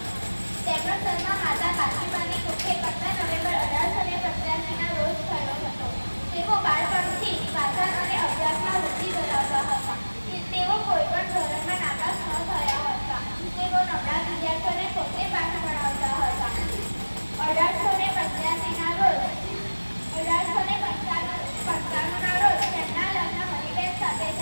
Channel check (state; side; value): inverted; both; correlation -1.00